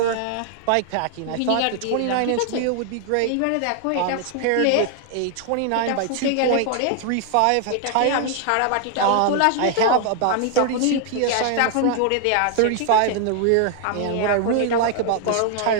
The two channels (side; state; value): both; different; correlation 0.00